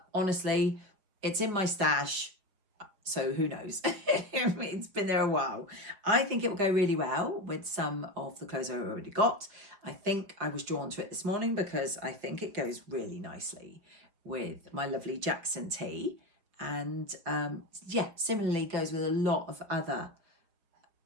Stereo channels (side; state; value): left; late; 5.4 ms